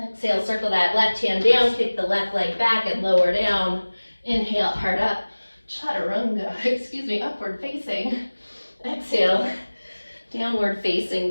circle that left hand down, kick the left leg back and lower down. Inhale, heart up. Chaturanga, upward facing. Exhale, downward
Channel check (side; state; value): both; inverted; correlation -1.00